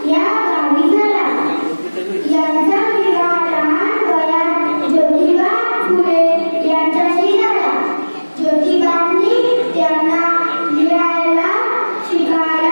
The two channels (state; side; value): inverted; both; correlation -1.00